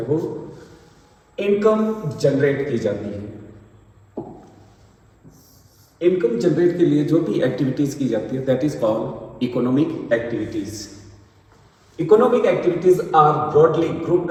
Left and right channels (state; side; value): identical; both; correlation 1.00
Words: वो इनकम जनरेट की जाती है। इनकम जनरेट के लिए जो भी एक्टिविटीज़ की जाती है that is called economic activities. Economic activities are broadly